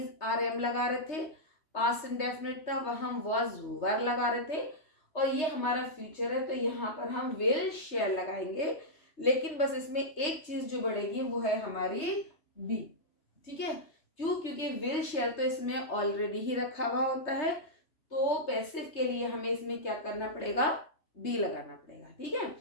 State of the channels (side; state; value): right; late; 3.3 ms